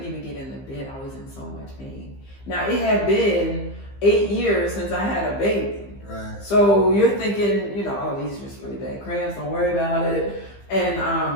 even get in the bed. I was in so much pain. Now, it had been 8 years since I had a baby. Right. So you're thinking, oh, these are just really bad cramps, don't worry about it.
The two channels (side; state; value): right; late; 15 ms